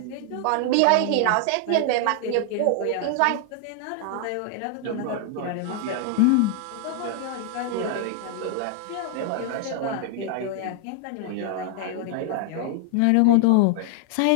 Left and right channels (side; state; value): both; different; correlation 0.00